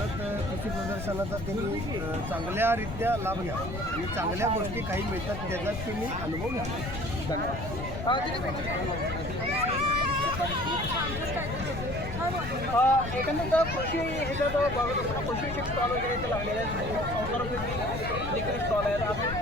कृषी प्रदर्शनाचा त्यांनी चांगल्यारीत्या लाभ घ्यावा आणि चांगल्या गोष्टी काही मिळतात त्याचा तुम्ही अनुभव घ्या. एकंदरीत कृषी ह्याच्यात कृषी स्टॉल वगैरे इथे लागलेले आहेत, संसार स्टॉल आहेत, आपण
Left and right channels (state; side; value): noise; left; rumble, 7 dB below the sound